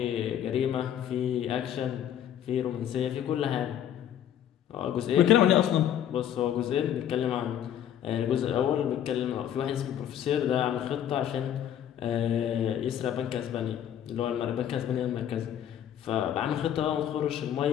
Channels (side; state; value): right; quieter; 10.3 dB